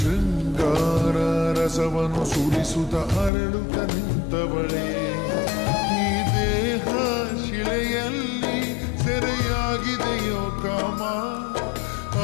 ರಸವನ್ನು ಸುರಿಸುತ್ತ ಅರಳುತ್ತ ನಿಂತವಳೇ ಈ ದೇಹ ಶಿಲೆಯಲ್ಲಿ ಸೆರೆಯಾಗಿದೆಯೋ ಕಾಮ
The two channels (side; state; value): right; drops out; at 3.3 s